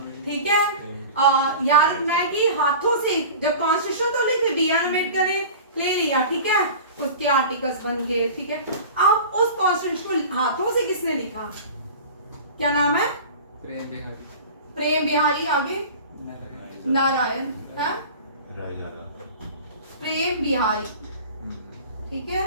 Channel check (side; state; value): both; inverted; correlation -0.36